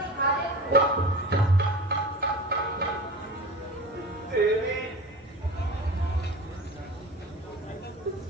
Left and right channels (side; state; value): both; normal; correlation 0.34